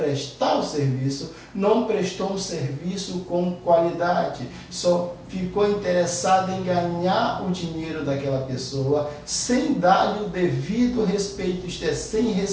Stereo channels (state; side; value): identical; both; correlation 1.00